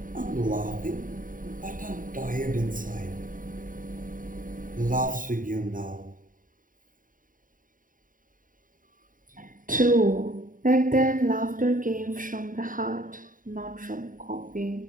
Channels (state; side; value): late; left; 0.39 ms